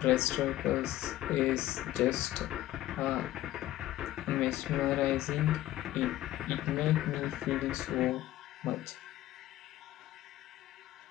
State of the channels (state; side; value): quieter; right; 14.8 dB